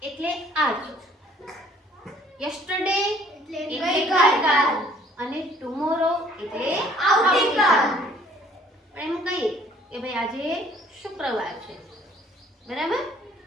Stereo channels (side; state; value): both; normal; correlation 0.58